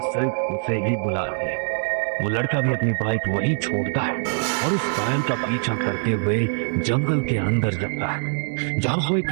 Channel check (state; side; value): silent; left; 63 dB below the other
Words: सिर्फ उसे ही बुला रही है। वो लड़का भी अपनी बाइक वहीं छोड़ता है और उस पायल का पीछा करते हुए जंगल के अंदर जाता है जहाँ वो